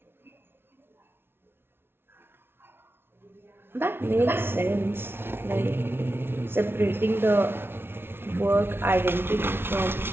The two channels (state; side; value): late; left; 0.11 ms